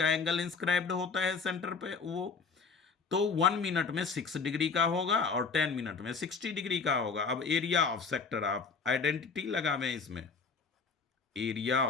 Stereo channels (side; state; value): right; quieter; 5.1 dB